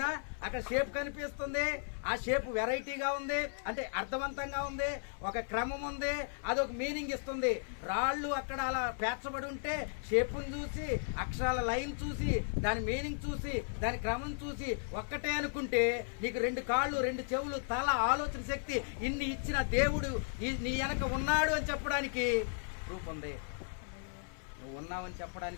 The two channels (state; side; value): silent; right; 54 dB below the other